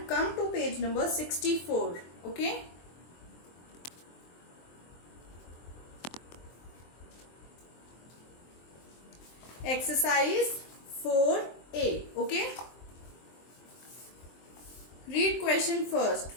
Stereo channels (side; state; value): right; late; 23 ms